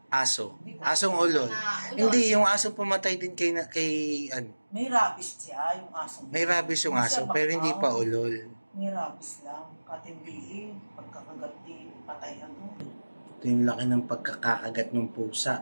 Aso. Asong ulol. Hindi, yung aso pumatay din kay May rabies siya, yung aso. May rabies yung aso, pero hindi pa ulol. May rabies lang. Katimbihin, pagkakagati, patay Ito yung laki ng pagkakagat ng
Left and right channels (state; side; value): inverted; both; correlation -1.00